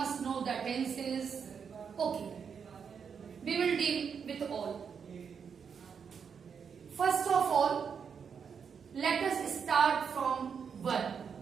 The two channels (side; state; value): left; quieter; 6.7 dB